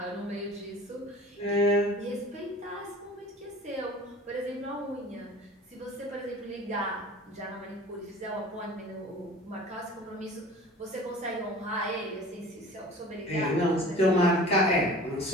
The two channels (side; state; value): both; normal; correlation 0.42